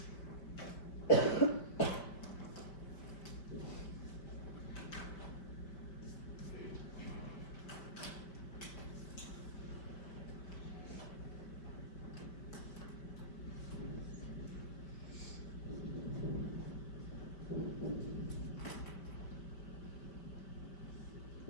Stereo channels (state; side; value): late; right; 5.2 ms